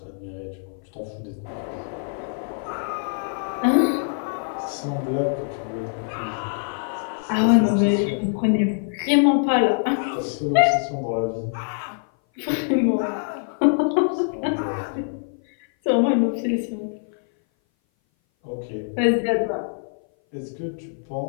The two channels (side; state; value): right; silent; 58 dB below the other